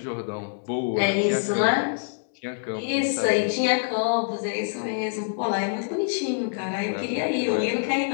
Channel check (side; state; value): right; silent; 61 dB below the other